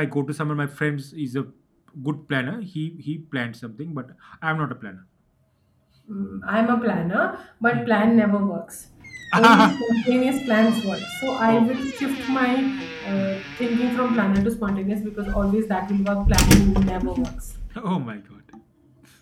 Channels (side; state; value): both; identical; correlation 1.00